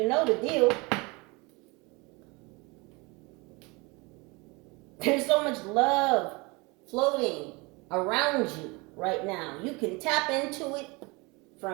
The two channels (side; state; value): left; quieter; 26.5 dB